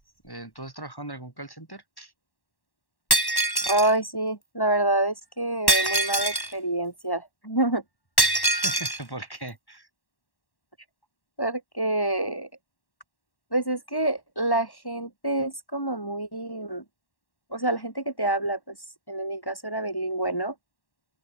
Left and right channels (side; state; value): right; late; 1.1 ms